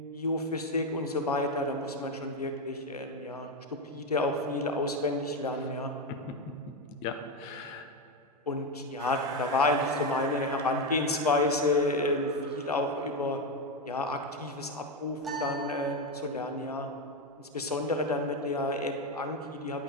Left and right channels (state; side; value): normal; both; correlation 0.10